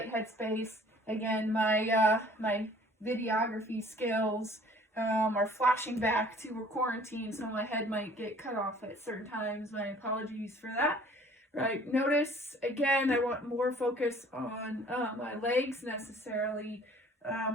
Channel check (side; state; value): both; normal; correlation 0.53